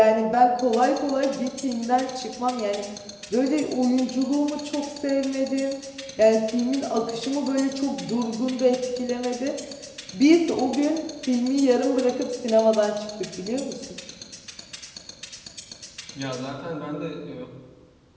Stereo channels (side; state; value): both; identical; correlation 1.00